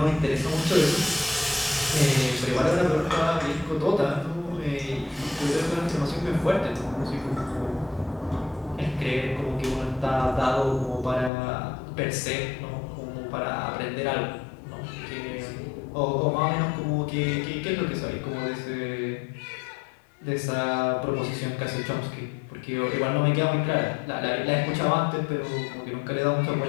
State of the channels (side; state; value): right; drops out; at 11.3 s